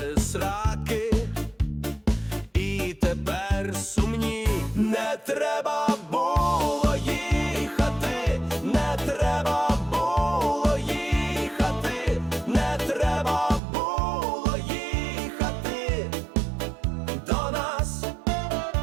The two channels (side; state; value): left; drops out; at 13.6 s